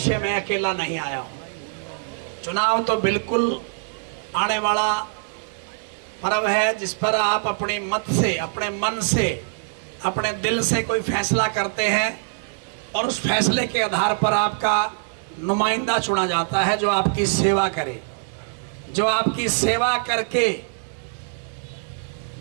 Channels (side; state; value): left; silent; digital silence